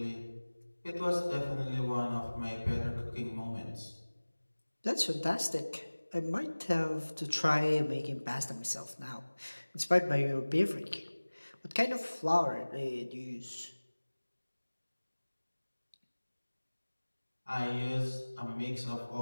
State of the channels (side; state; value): both; inverted; correlation -1.00